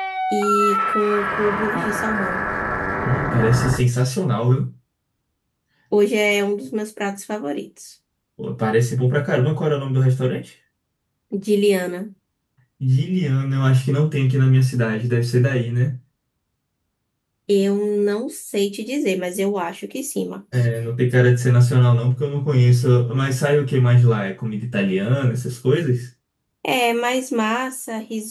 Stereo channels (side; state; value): both; identical; correlation 1.00